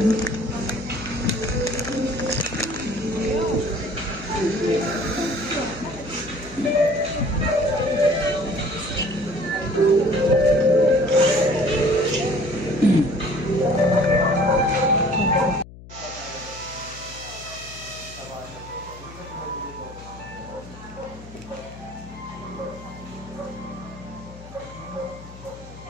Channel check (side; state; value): left; noise; hum, 17 dB below the sound